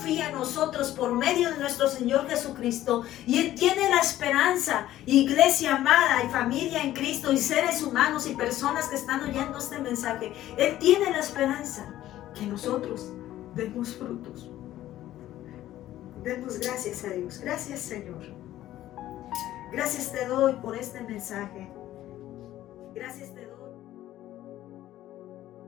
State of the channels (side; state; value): right; quieter; 13.8 dB